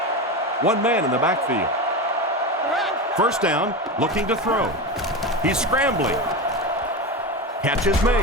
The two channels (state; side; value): normal; both; correlation 0.20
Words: One man in the backfield. 1st down, looking to throw. He's scrambling. Catch is